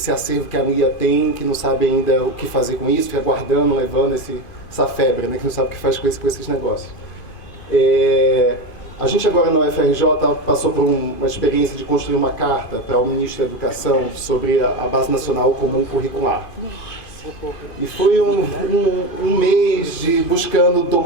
acervo que a Lia tem, que não sabe ainda o que fazer com isso, fica guardando, levando essa febre, né, que não sabe o que faz com esses negócios. A gente agora na UFRJ passou por uma experiência de construir uma carta para o Ministro da Educação sobre a Base Nacional Comum Curricular. E foi um mês de buscando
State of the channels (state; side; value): late; right; 2.5 ms